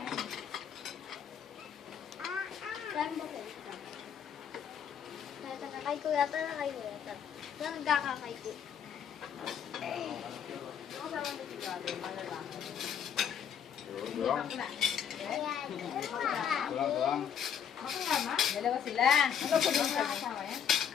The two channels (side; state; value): right; quieter; 8.1 dB